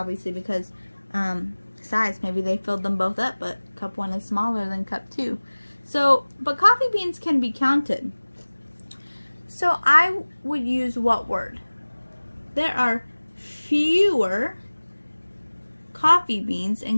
because size, maybe they filled them both up, but cup 1 is smaller than cup 2. So, but coffee beans can be counted. So I would use what word? There are fewer coffee beans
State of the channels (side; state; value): both; inverted; correlation -1.00